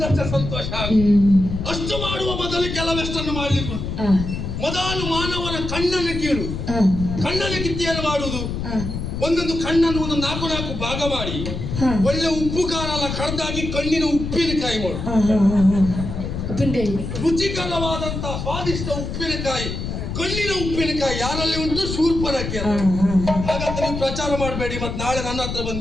ಸಂತೋಷ ಆಗುತ್ತೆ. ಅಷ್ಟು ಮಾಡುವ ಮೊದಲು ಕೆಲವೆಷ್ಟನ್ನು ಮಾಡ್ಲಿಕ್ಕೆ ಮೊದಲು ಮಾನವನ ಕಣ್ಣನ್ನು ಕೀಳು. ಕಣ್ಣನ್ನು ಕಿತ್ತಿಯನ್ನು ಮಾಡುವುದು, ಒಂದೊಂದು ಕಣ್ಣನ್ನು ಒಂದು 4 ಭಾಗ ಮಾಡಿ ಒಳ್ಳೆ ಉಪ್ಪು ಖಾರ ಎಲ್ಲ ಕಡ್ದಾಗಿ ಕಣ್ಣಿನ ಉಪ್ಪಿನಕಾಯಿ ಮಾಡು. ರುಚಿಕರವಾದಂತಹ ಸ್ವಾದಿಷ್ಟ ಉಪ್ಪಿನಕಾಯಿ, ಕಣ್ಣಿನ ಉಪ್ಪಿನಕಾಯಿ ಯಾರಲ್ಲಿ ಉಂಟು? ಶೂರ್ಪನಕ್ಕೆ. ಹಾಗಂತ ನೀವು ಪ್ರಚಾರ ಮಾಡಬೇಡಿ, ಮತ್ತೆ ನಾಳೆ ನನ್ನ ಹತ್ರ ಬಂದು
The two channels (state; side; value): noise; left; rumble, 5 dB below the sound